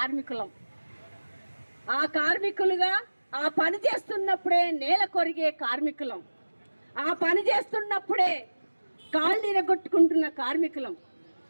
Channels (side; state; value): both; inverted; correlation -1.00